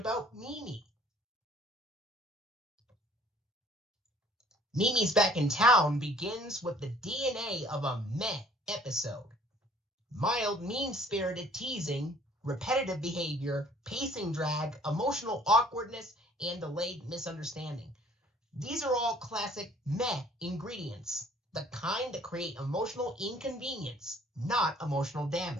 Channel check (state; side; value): normal; both; correlation 0.56